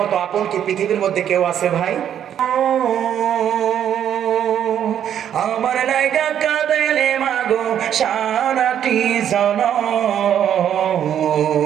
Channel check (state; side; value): quieter; left; 9.7 dB